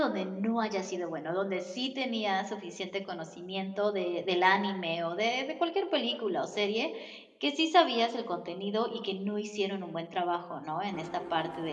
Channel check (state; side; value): identical; both; correlation 1.00